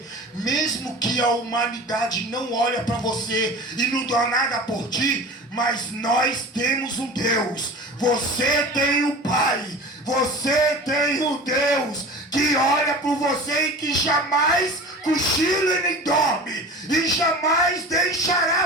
mesmo que a humanidade não olha para você e não dá nada por ti, mas nós temos um Deus. Você tem um Pai, você tem um Deus que olha por você e que jamais cochila e nem dorme, e jamais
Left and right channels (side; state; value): both; normal; correlation 0.36